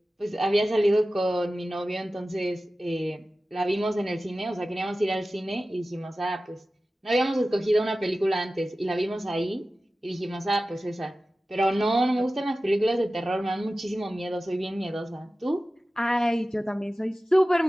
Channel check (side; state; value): both; normal; correlation 0.95